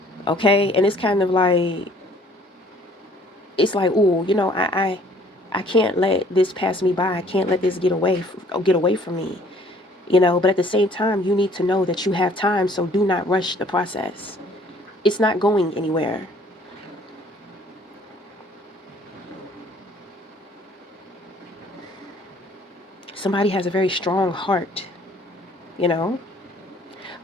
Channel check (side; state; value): both; normal; correlation 0.58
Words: Okay? And it's kind of like, it's like, oh, I can't let this pass me by. I can't let this get away from me. But at the same time, you need to know that you have time, so do not rush the process. It's not going anywhere. Somebody has a very strong heart, you know,